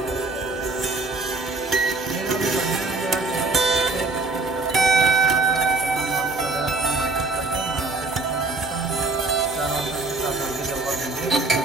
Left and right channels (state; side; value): quieter; left; 3.4 dB